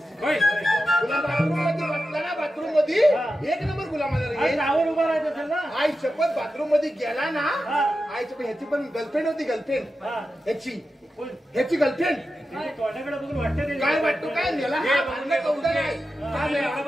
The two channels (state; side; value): normal; both; correlation 0.91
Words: होय तुला बाबू ते वाटलं ना बाथरूम मध्ये एक नंबर गुलामाला रे. नावर उभा राहायचं असेल ना. आई शपथ बाथरूम मध्ये गेला ना. आईची पण ह्याची पण गर्लफ्रेंड होती. गर्लफ्रेंड ह्याची गर्लफ्रेंड. तोंडाकडे बघून वाटतं काय वाटतो काय नेला हा भांडलं कौंडर आहे.